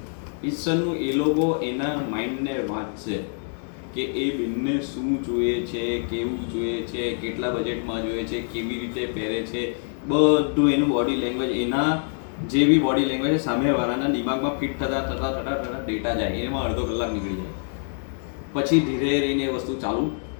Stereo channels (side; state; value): right; silent; 58 dB below the other